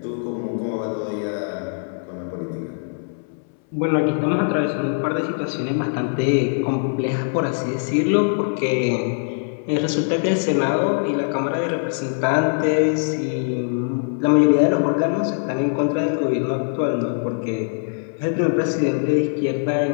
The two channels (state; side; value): silent; right; 64 dB below the other